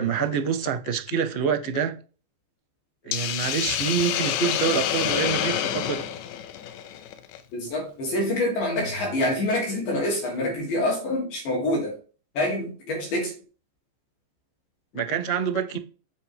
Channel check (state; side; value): late; right; 14 ms